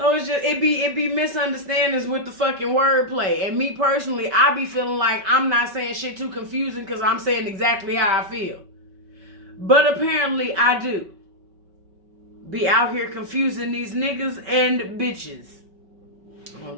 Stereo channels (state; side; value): late; left; 5.3 ms